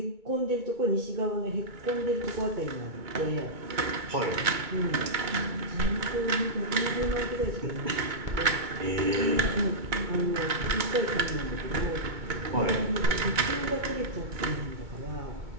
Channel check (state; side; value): late; left; 2.2 ms